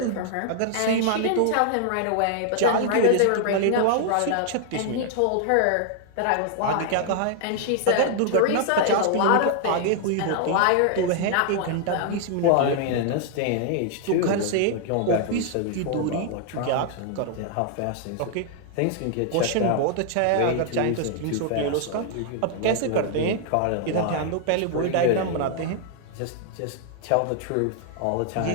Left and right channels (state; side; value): different; both; correlation 0.00